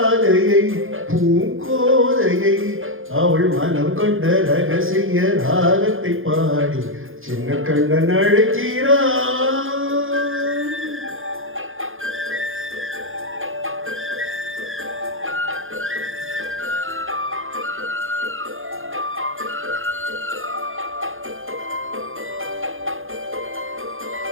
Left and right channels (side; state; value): left; late; 0.59 ms